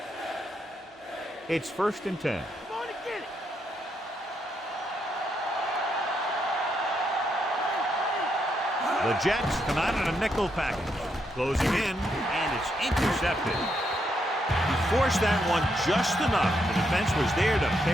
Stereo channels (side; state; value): both; normal; correlation 0.78